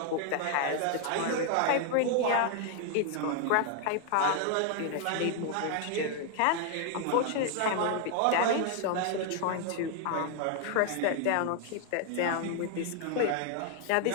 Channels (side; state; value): both; different; correlation 0.00